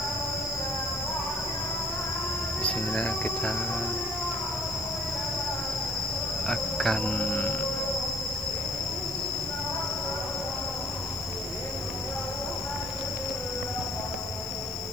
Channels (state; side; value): noise; right; hiss, 19 dB below the sound